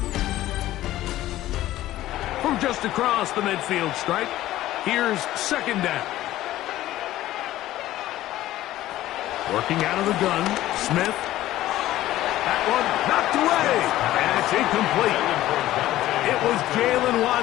From just across the midfield stripe, here's second down. Working out of the gun, Smith. That one knocked away, and it's incomplete. It was Jalen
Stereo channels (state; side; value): quieter; right; 14.8 dB